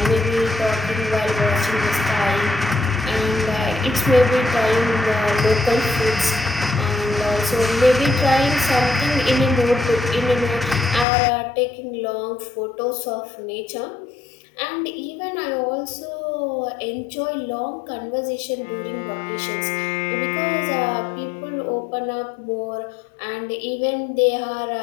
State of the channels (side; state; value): right; drops out; at 11.1 s